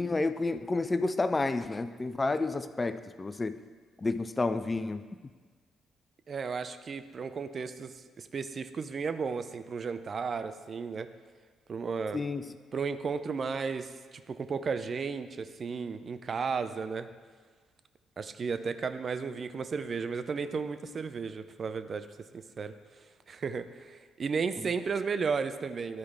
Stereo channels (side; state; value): both; normal; correlation 0.86